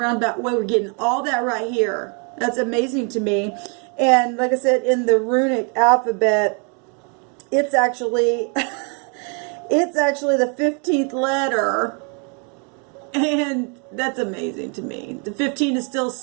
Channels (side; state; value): left; quieter; 37.6 dB